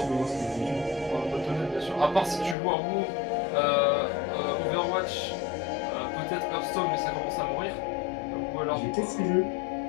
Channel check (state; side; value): drops out; right; at 2.6 s